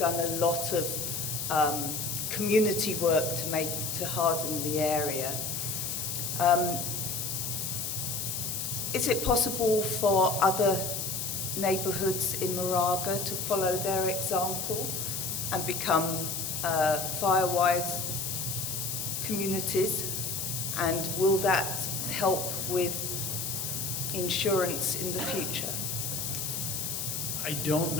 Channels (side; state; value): left; noise; hiss, 3 dB below the sound